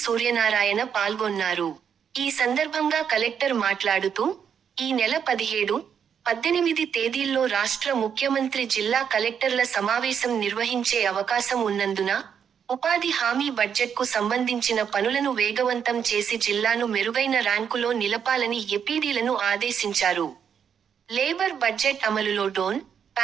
సూర్యనారాయణ పాల్గొన్నారు. ఈ సందర్భంగా కలెక్టర్ మాట్లాడుతూ, ఈ నెల 17, 18 తేదీల్లో రాష్ట్ర ముఖ్యమంత్రి జిల్లా కలెక్టర్ల సమావేశం నిర్వహించే అవకాశం ఉన్నందున, ఉపాధి హామీ బడ్జెట్కు సంబంధించిన పనులను వేగవంతం చేసి జిల్లాను మెరుగైన ర్యాంకులో నిలపాలని ఎపిడీలను ఆదేశించారు. లేబర్ బడ్జెట్ అమలులో డోన్,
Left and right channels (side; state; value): left; quieter; 7.7 dB